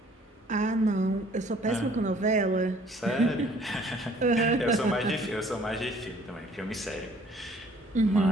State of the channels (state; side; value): normal; both; correlation 0.57